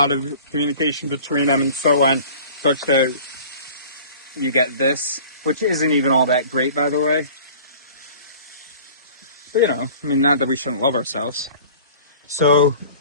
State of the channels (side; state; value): both; inverted; correlation -0.45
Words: of communication between them and so on, such that you get this, which isn't even all that great, by the way. But not that we shouldn't love ourselves. So